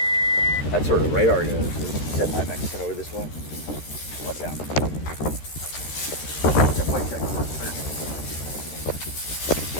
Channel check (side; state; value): right; late; 13 ms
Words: That's where the radar goes. Set my Mexican over this way. Watch out. That plate check spiritually.